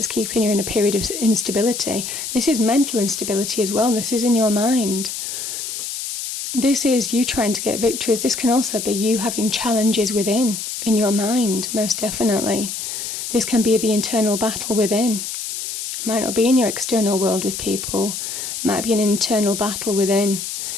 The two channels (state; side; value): noise; left; hiss, 6 dB below the sound